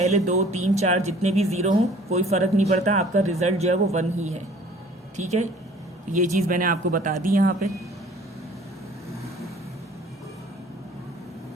2, 3, 4 जितने भी ज़ीरो हों कोई फ़र्क नहीं पड़ता, आपका रिजल्ट जो है वो 1 ही है, ठीक है। ये चीज़ मैंने आपको बता दी यहाँ पे।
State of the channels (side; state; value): both; normal; correlation 0.52